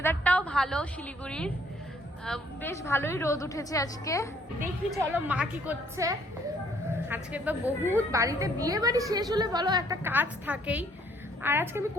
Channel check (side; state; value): both; normal; correlation 0.64